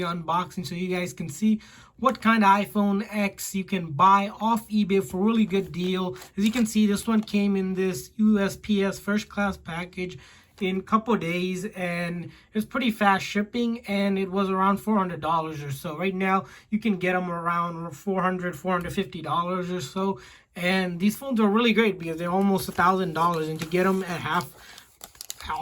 an unboxing so you guys can see what kind of iPhone X you can buy off eBay for a really good deal. As you can see, this one came in this USPS first class package in a couple days, and it's pretty fast shipping, and it was around $400 or so. Right now you can get them around $450 or so, and these phones are really great because they're almost $1,000, and to get them at half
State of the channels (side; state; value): both; identical; correlation 1.00